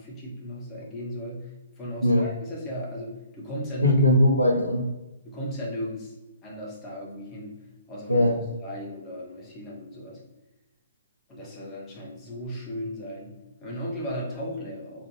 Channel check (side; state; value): both; inverted; correlation -0.60